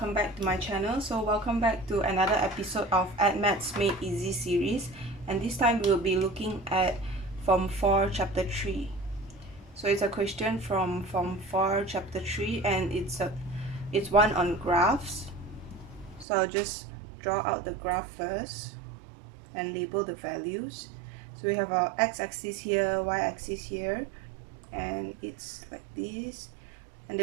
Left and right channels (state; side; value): drops out; left; at 16.2 s